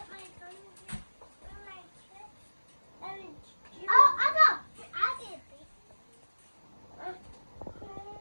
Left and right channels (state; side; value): inverted; both; correlation -1.00